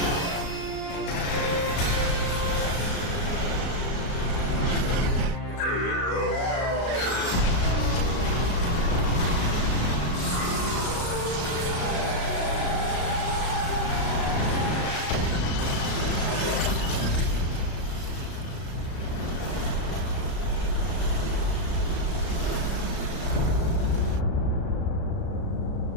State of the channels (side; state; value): right; late; 35 ms